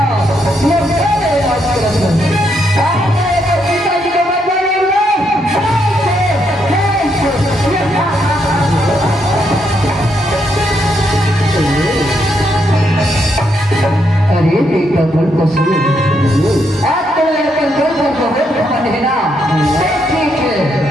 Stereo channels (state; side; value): normal; both; correlation 0.77